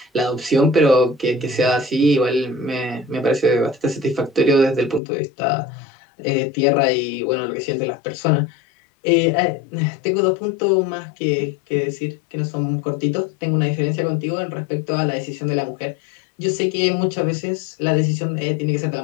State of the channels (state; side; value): drops out; right; at 5.0 s